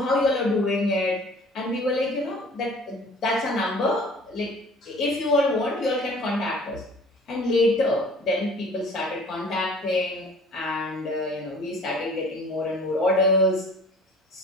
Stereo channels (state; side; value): normal; both; correlation 0.48